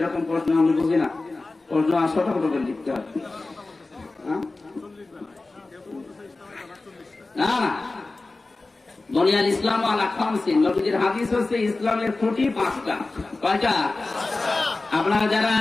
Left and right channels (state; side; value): quieter; right; 3.3 dB